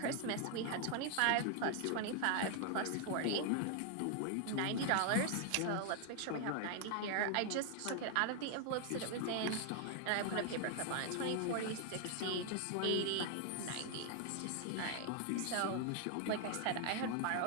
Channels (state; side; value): different; both; correlation 0.00